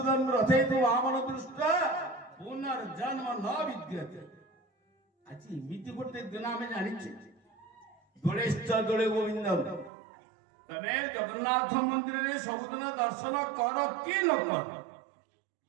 रथे तू वामन दृष्टा पुनर्जन्म न विद्यते आज इमिति गोटे दिन आम जानी दोलेश्च दोले गोविंदम तमे जगन्नाथ मंदिर रे सबुदिन दर्शन कर कि न कर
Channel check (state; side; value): drops out; left; at 9.9 s